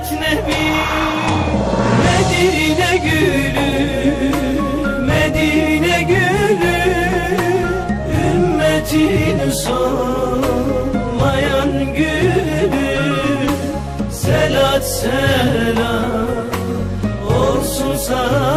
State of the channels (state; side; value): identical; both; correlation 1.00